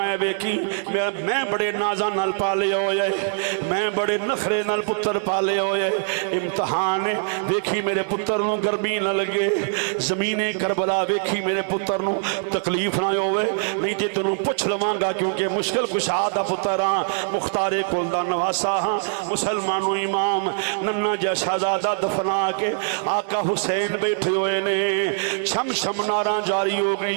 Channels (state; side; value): silent; left; digital silence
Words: वेखी मैं बड़े नाजा नाल पाले होए, मैं बड़े नखरे नाल पुत्र पाले होए, इम्तहान है वेखी मेरे पुत्र नू गर्मी न लगे, जमीने करबला वेखी मेरे पुत्र नू तकलीफ ना होवे, नहीं तो तेनू पुछ लवांगा क्योंकि मुश्किल कुशा दा पुत्र हाँ, मुख्तारे कुल दा नवासा हाँ, मुसलमानों इमाम नन्ना जा शहजादा दफना के आका हुसैन बैठे हुए ने। छम छम नारा जारी हो